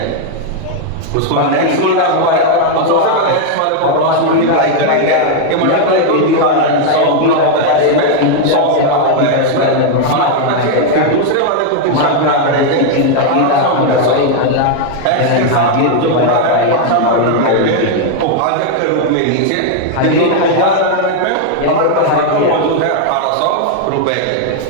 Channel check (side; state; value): both; different; correlation 0.00